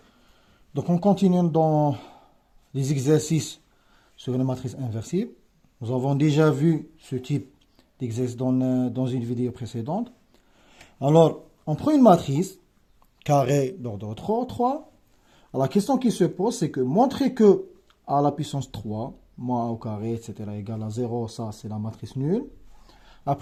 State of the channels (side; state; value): both; identical; correlation 1.00